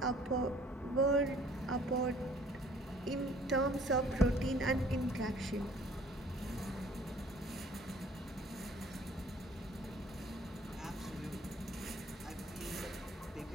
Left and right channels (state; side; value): normal; both; correlation 0.55